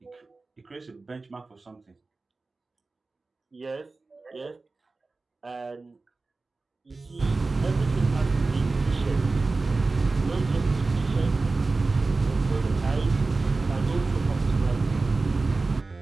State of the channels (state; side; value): quieter; left; 3.6 dB